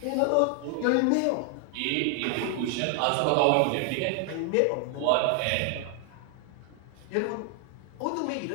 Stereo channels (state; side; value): different; both; correlation 0.00